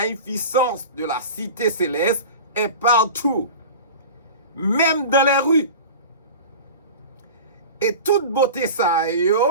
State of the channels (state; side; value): inverted; both; correlation -0.34